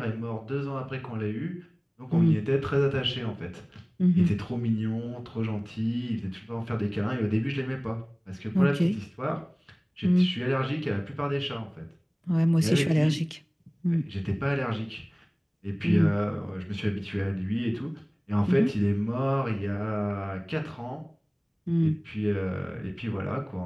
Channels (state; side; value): identical; both; correlation 1.00